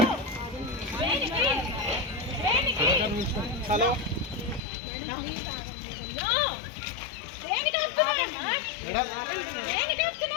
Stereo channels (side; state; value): right; drops out; at 4.6 s